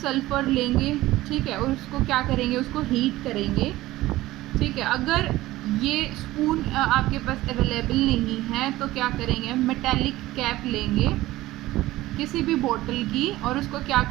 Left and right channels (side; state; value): left; quieter; 17.0 dB